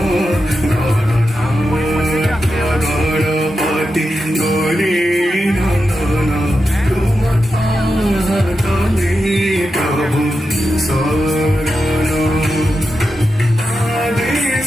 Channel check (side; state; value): both; normal; correlation 0.89